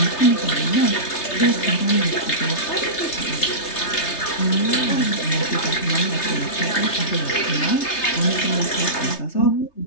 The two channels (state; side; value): late; right; 3.3 ms